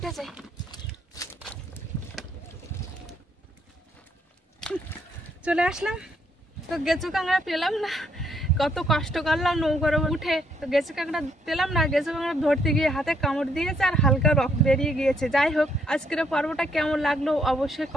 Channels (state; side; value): normal; both; correlation 0.71